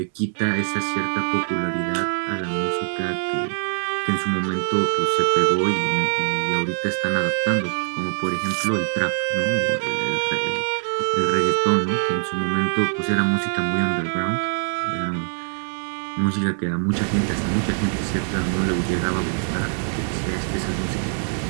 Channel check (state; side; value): silent; left; 63 dB below the other